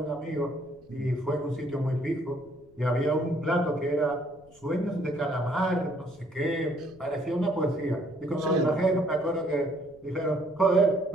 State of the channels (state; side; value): noise; left; rumble, 27 dB below the sound